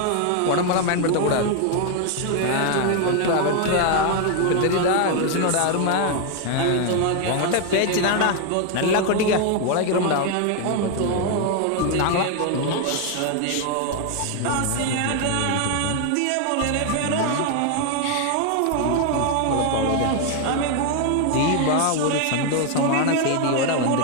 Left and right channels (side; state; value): both; different; correlation 0.01